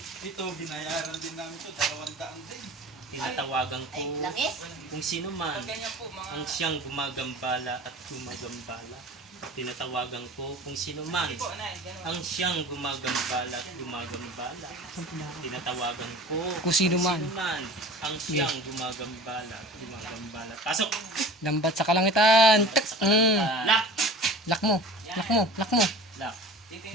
Ito, binayaran din namin ito, 200 din. Tinatawagan Ay, ko langis. kung sino man ang siyang gumagambala at gumagambala. Tinatawagan ko kung sino man ang siyang gumagambala at gumagambala. Tinatawagan ko Kung sino man. ang siyang gumagambala at gumagambala. Pasok! Lambat sa kalangitan. Tak. Lock! Lock mo. Lock mo. Lock mo. Lock!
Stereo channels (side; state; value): both; normal; correlation 0.40